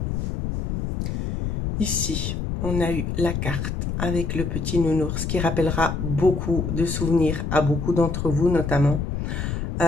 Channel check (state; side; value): noise; left; rumble, 3 dB below the sound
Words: Ici, on a eu la carte avec le petit nounours qui rappellera beaucoup de souvenirs à beaucoup d'entre vous, notamment.